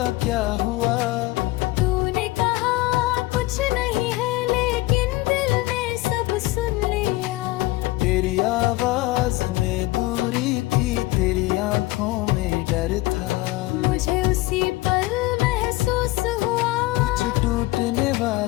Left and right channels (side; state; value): right; quieter; 19.4 dB